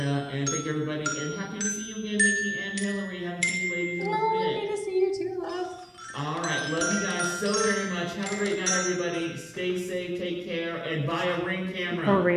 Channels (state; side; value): identical; both; correlation 1.00